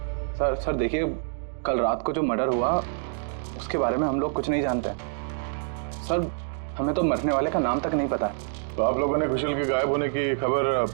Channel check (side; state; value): left; silent; 61 dB below the other